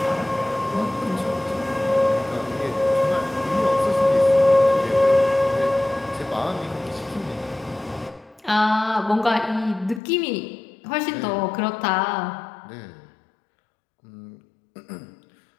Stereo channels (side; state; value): right; drops out; at 10.0 s